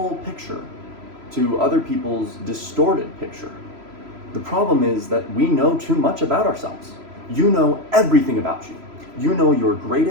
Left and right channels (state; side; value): late; left; 3.0 ms